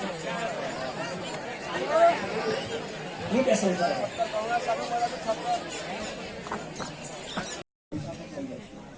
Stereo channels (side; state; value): both; identical; correlation 1.00